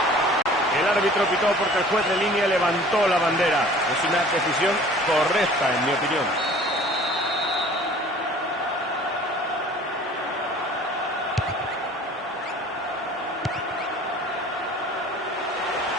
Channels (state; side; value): normal; both; correlation 0.48